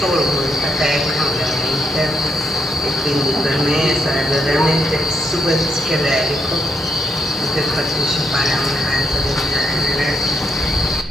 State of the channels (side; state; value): both; normal; correlation 0.78